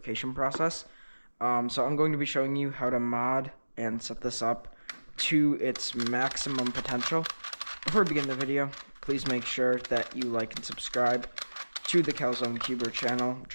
process. So I'm going to be showing you how to mod and set this up to its maximum potential. Before we begin the video, please make sure that you like and subscribe to the Calzone Cuber channel. I'm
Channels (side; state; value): both; inverted; correlation -1.00